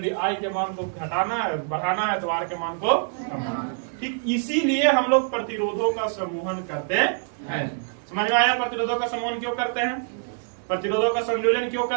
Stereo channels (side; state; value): left; silent; digital silence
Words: I के मान को घटाना है बढ़ाना है तो R के मान को कमाना है। ठीक इसीलिए हम लोग प्रतिरोधों का समूहन करते हैं। समझ में आया? प्रतिरोधों का समूहन क्यों करते हैं? प्रतिरोधों का संयोजन क्यों